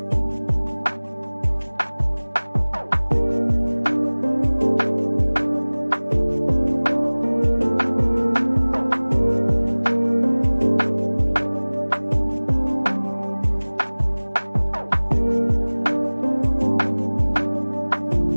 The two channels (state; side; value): inverted; both; correlation -1.00